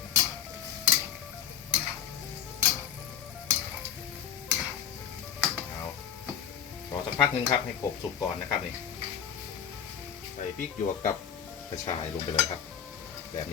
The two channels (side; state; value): right; quieter; 8.9 dB